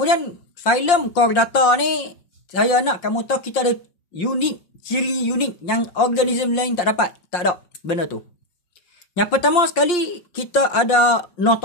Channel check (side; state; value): right; late; 5.6 ms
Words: filem Chordata ni saya nak kamu tahu kita ada ciri unik yang organism lain tak dapat. Tak ada benda tu. Yang pertama sekali, kita ada